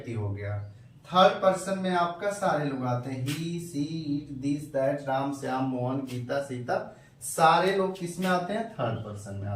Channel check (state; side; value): identical; both; correlation 1.00